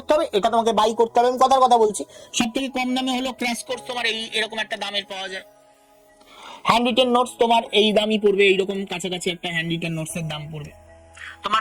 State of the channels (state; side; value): identical; both; correlation 1.00